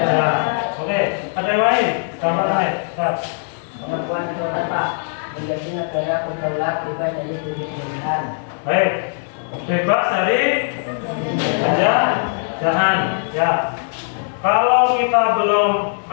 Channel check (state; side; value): silent; right; 58 dB below the other